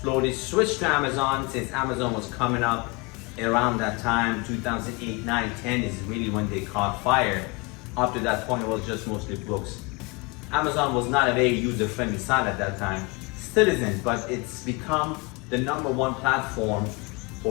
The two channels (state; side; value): quieter; right; 27.3 dB